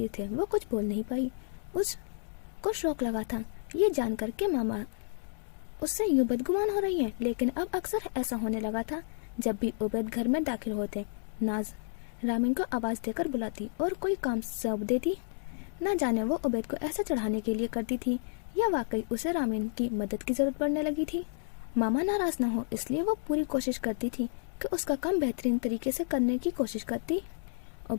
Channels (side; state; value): right; silent; digital silence